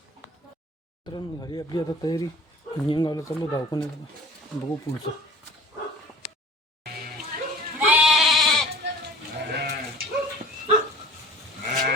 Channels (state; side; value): normal; both; correlation 0.45